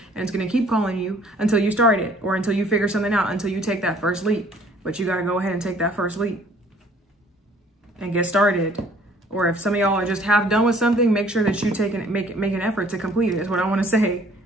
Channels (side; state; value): both; normal; correlation 0.56